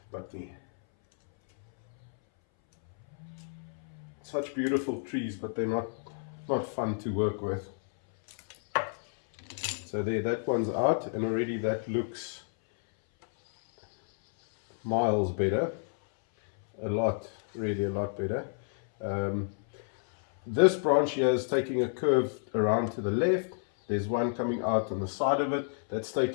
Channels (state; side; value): silent; right; 58 dB below the other